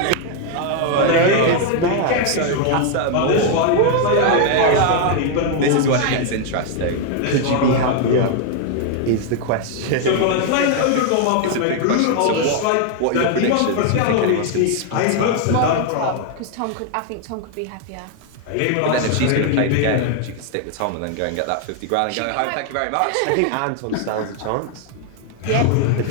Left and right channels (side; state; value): both; different; correlation 0.01